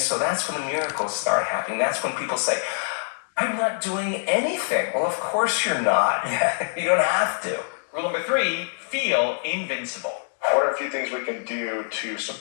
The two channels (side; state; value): right; silent; 62 dB below the other